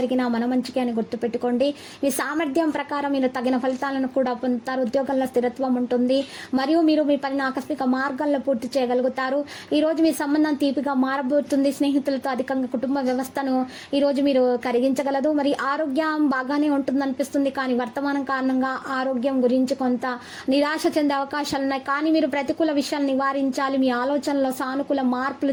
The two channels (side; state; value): both; identical; correlation 1.00